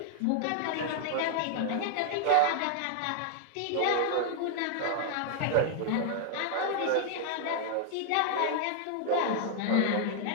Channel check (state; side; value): different; both; correlation -0.01